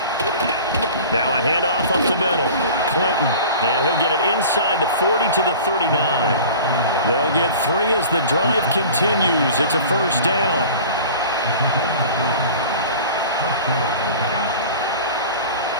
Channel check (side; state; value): both; inverted; correlation -0.40